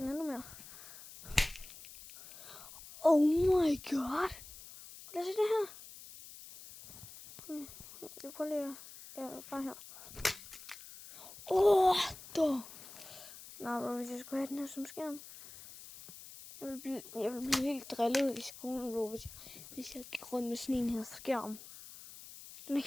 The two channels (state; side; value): noise; left; hiss, 16 dB below the sound